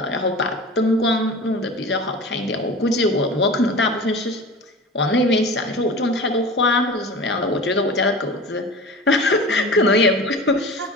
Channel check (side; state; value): both; normal; correlation 0.35